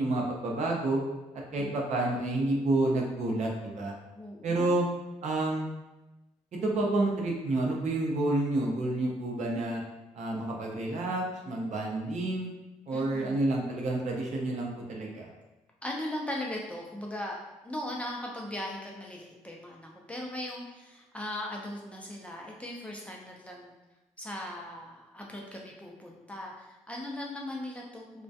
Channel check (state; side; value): normal; both; correlation 0.70